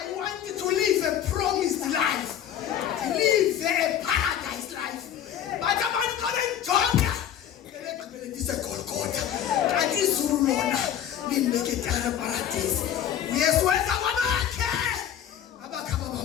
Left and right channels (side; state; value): right; quieter; 10.0 dB